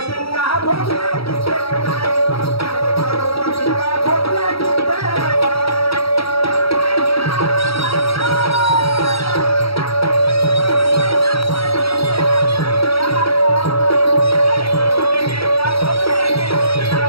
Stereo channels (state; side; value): late; right; 0.76 ms